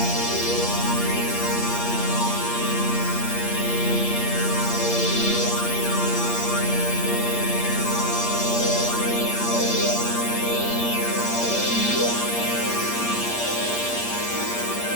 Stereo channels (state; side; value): late; right; 8.5 ms